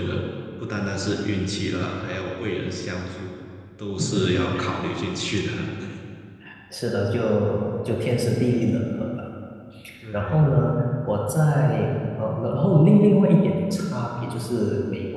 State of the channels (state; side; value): identical; both; correlation 1.00